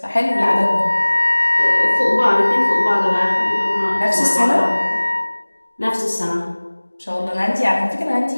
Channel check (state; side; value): inverted; both; correlation -1.00